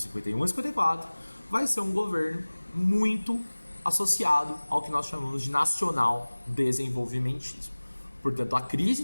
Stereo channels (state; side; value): inverted; both; correlation -1.00